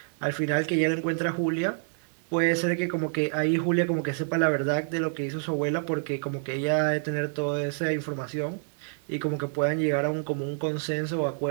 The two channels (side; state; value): left; silent; digital silence